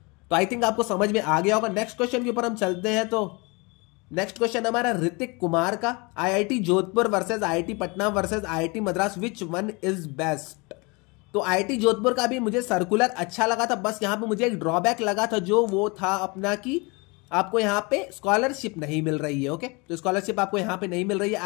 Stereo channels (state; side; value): quieter; right; 27.9 dB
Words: तो आई थिंक आपको समझ में आ गया होगा। नेक्स्ट क्वेश्चन के ऊपर हम चलते हैं। तो नेक्स्ट क्वेश्चन हमारा ऋतिक कुमार का, IIT Jodhpur versus IIT Patna versus IIT Madras, which one is best. तो आईआईटी जोधपुर का भी मुझे सर्कुलर अच्छा लगा था, बस यहाँ पे मुझे एक ड्रॉबैक लगा था, जो वो था अपना कि आपको यहाँ पे स्कॉलरशिप नहीं मिल रही है। ओके, तो स्कॉलरशिप आपको यहाँ पे नहीं मिल रही है।